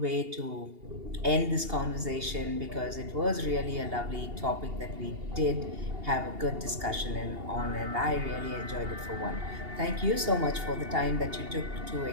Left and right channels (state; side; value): late; left; 2.8 ms